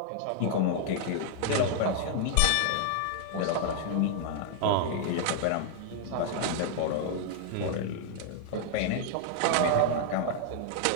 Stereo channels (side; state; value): both; different; correlation -0.01